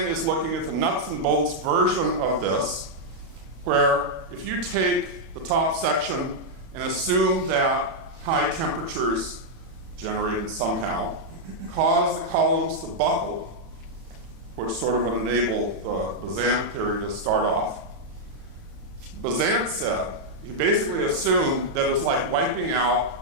is looking at the nuts and bolts version of this, where if you take the top section and assume that high temperatures generated somehow cause the columns to buckle, which sort of would enable the Bazant theory to start off. Bazant said, he basically assumed that it's like wiping out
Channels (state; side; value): late; left; 31 ms